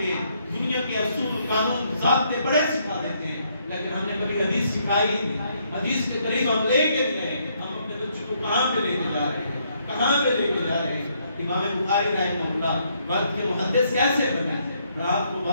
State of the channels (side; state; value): both; inverted; correlation -0.72